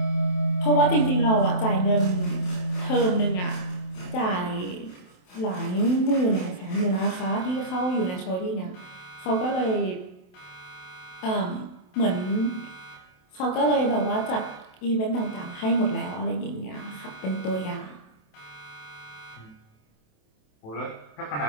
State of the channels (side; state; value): right; late; 27 ms